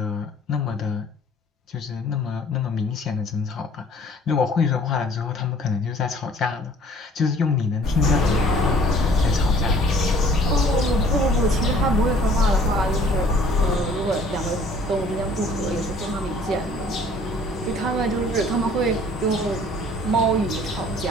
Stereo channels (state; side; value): normal; both; correlation 0.54